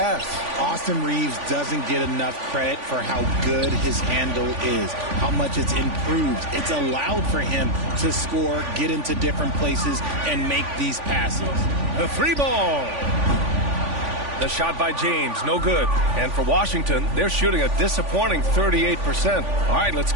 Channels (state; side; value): late; left; 3.5 ms